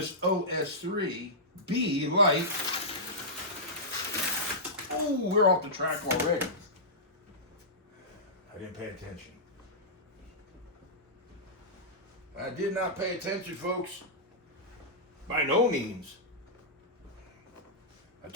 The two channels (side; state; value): both; normal; correlation -0.14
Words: OS3 B Lite. Oh, we're off the track already. I didn't pay attention. I did not pay attention, folks. By no means. I